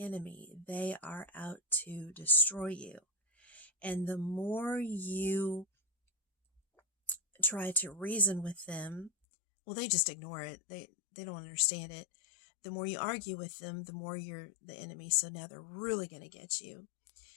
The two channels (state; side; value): drops out; right; at 9.1 s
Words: They are out to destroy you. And the more you try to reason with them, well, they just ignore it. They don't understand it. The more you argue with them, the more you're the enemy. So now they're really going to get you.